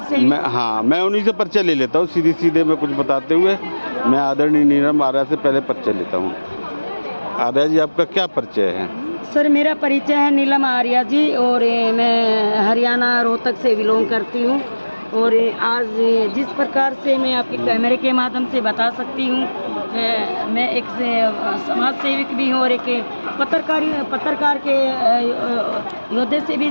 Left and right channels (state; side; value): inverted; both; correlation -1.00